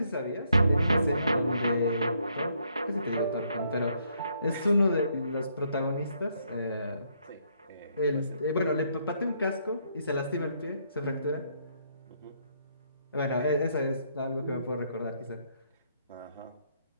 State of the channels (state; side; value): inverted; both; correlation -0.72